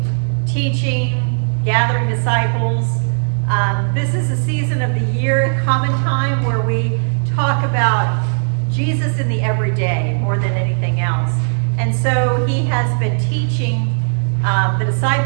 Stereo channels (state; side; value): silent; left; 68 dB below the other